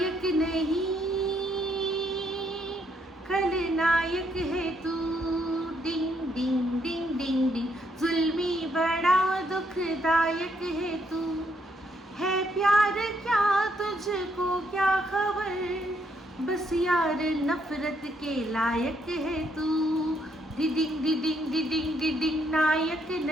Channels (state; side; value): normal; both; correlation 0.74